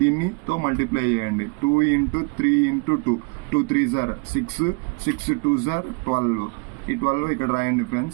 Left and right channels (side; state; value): left; quieter; 30.7 dB